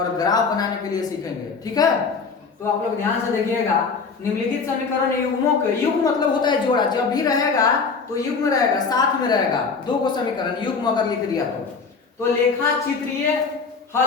ग्राफ बनाने के लिए सीखेंगे, ठीक है। तो आप लोग ध्यान से देखिएगा, निम्नलिखित समीकरण युग्मों के, युग्म मतलब होता है जोड़ा, जब भी रहेगा तो युग्म रहेगा, साथ में रहेगा। दो को समीकरण युग्म अगर लिख दिया तो लेखा चित्रीय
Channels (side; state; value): right; quieter; 5.0 dB